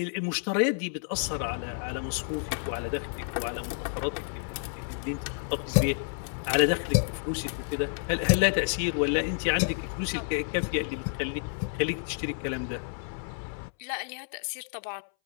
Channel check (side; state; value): right; silent; 58 dB below the other